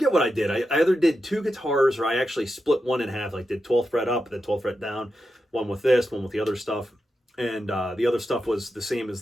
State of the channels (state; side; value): normal; both; correlation 0.88